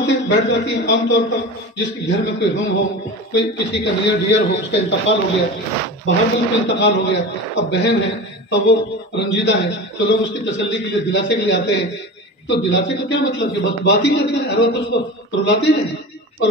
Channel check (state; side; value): normal; both; correlation 0.30